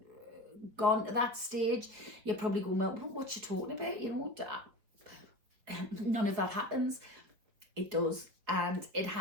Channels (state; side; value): late; left; 5.0 ms